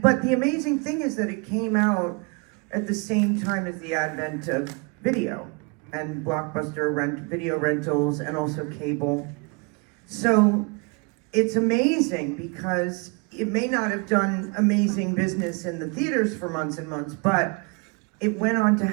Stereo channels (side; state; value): left; quieter; 30.7 dB